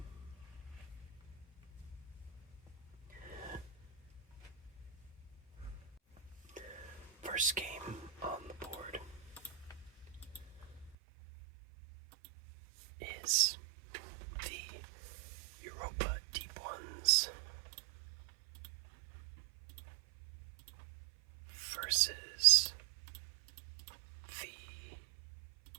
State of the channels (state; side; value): drops out; left; at 11.0 s